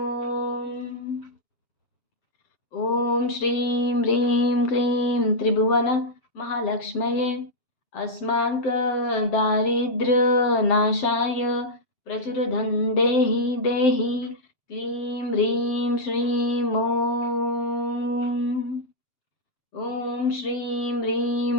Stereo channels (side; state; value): right; late; 7.7 ms